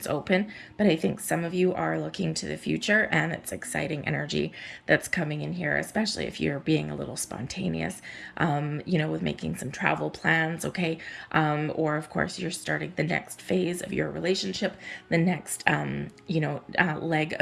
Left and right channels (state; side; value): identical; both; correlation 1.00